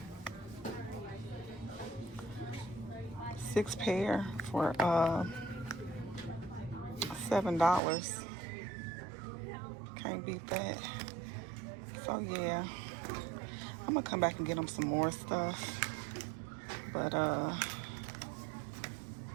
6 pair for $7. Can't beat that. So yeah, I'm gonna come back and get him some more stuff. But yeah,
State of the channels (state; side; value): drops out; left; at 7.8 s